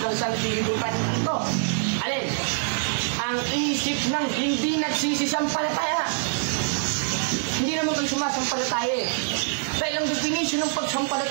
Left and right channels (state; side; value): silent; left; digital silence